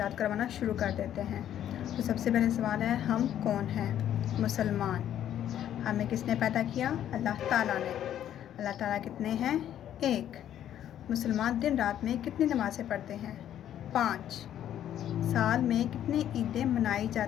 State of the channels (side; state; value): right; quieter; 10.9 dB